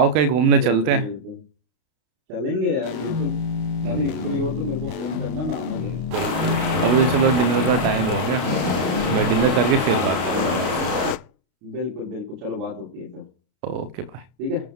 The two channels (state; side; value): late; left; 32 ms